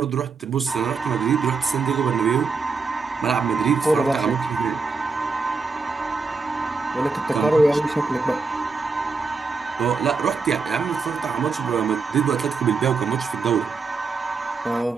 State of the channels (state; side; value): quieter; left; 4.5 dB